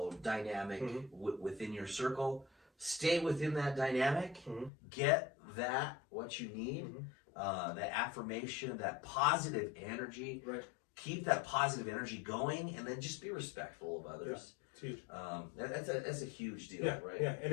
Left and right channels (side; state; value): right; drops out; at 4.7 s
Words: dynamic within your circle, stay within that dynamic, get that, what you need, that affirmation, that positive energy, keep that positive energy going, and then just be respectful of others. Huge. That's a huge deal, right? Yeah, and